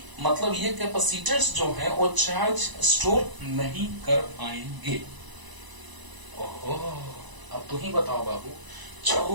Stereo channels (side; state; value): left; late; 1.0 ms